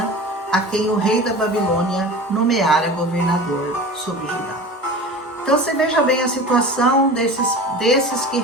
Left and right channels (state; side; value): normal; both; correlation 0.35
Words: a quem o rei da Babilônia nomeara governador sobre Judá. Então você veja bem a situação desses que